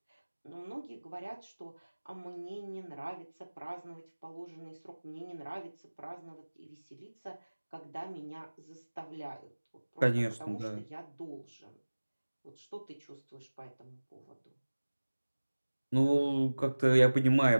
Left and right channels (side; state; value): both; inverted; correlation -1.00